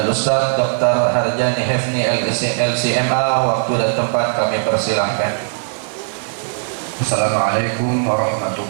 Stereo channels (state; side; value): silent; left; 67 dB below the other